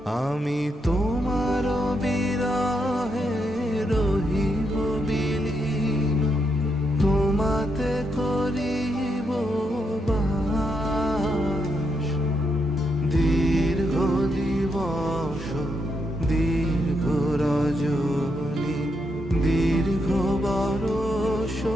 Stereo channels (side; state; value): both; normal; correlation 0.80